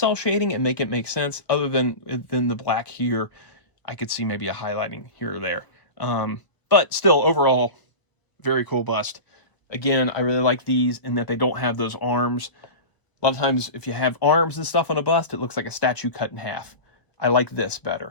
shading and make it make sense. Other than the black here, I could see maybe a highlighting here or there. But still, overall, very cool bust. Again, I really like these in that they don't have those arms. A lot of times, if you have arms and stuff on a bust, it looks like a statue cut in half. I like this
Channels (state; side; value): late; right; 1.0 ms